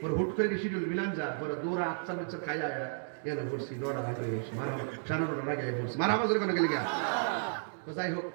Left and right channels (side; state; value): left; silent; digital silence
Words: ওর হুট করে শিডিউল মিলান যা পরে দৌড়া আচ্ছা বাচ্চা খাই আয়া এনে পড়ছি নটা আগে সাড়ে 9টার আগে পড়ছি মারা বাজার কোনো গেলি গা। তো যাই হোক